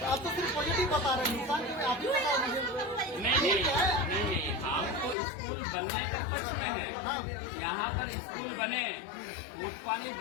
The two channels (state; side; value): drops out; right; at 5.2 s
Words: आप तो सिर्फ पॉजिटिव बता रहे हैं, नुकसान के आप ही बताओ मुझे। नहीं, हम तो स्कूल बनने के पक्ष में है। यहाँ पर स्कूल बने, फूटपानी